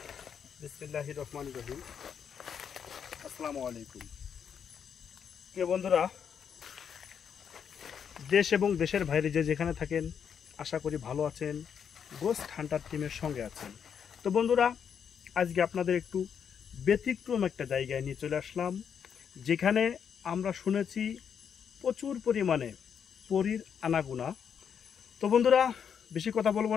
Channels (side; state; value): right; quieter; 7.6 dB